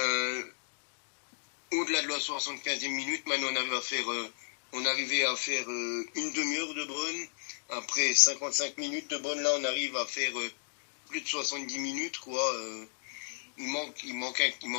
au-delà de la 75e minute, maintenant on arrivait à faire une demi-heure de Brun. Après 55 minutes de Brun, là, on arrive à faire plus de 70 minutes, quoi. Il manquait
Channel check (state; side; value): silent; right; digital silence